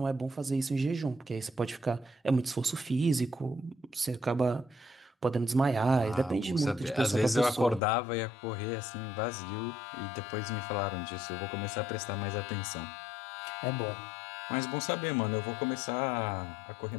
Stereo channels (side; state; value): right; drops out; at 7.8 s